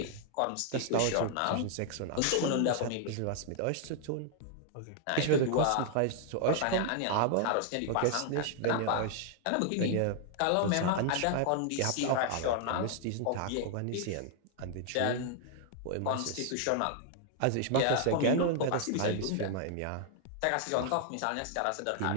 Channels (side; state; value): both; different; correlation 0.00